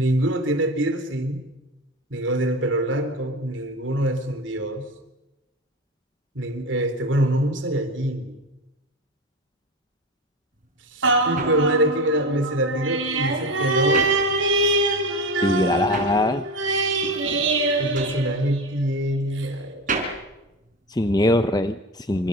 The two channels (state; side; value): normal; both; correlation 0.24